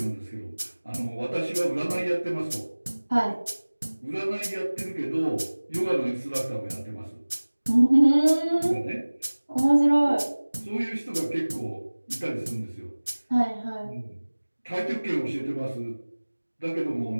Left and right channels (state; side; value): inverted; both; correlation -1.00